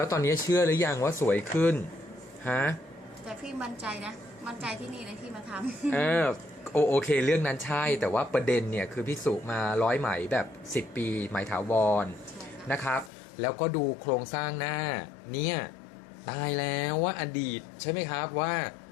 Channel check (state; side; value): drops out; right; at 13.1 s